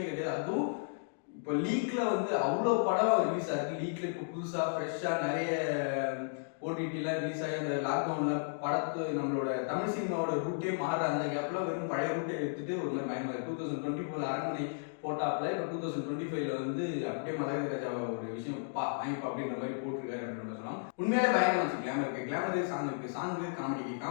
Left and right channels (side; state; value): right; silent; digital silence